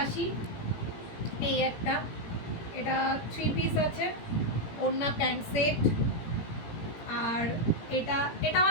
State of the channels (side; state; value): right; late; 17 ms